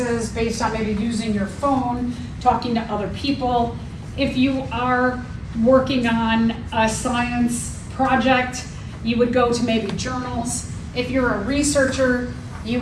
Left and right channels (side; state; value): both; identical; correlation 1.00